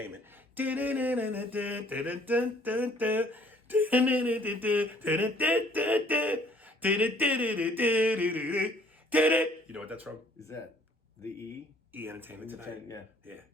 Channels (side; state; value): both; normal; correlation 0.59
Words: You know what that's from? Is that the E? E Entertainment Tonight. Yeah.